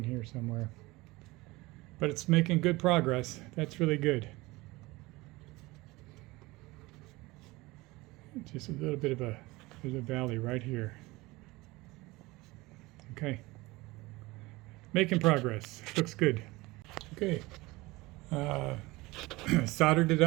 here somewhere. But it's making good progress. That's really good. Just a little bit of there's a valley right here. Okay. Making progress. Looks good. Okay. Soldered it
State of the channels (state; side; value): quieter; left; 21.4 dB